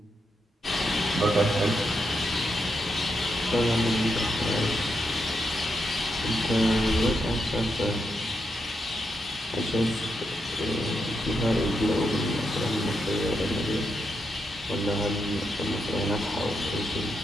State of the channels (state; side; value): normal; both; correlation 0.83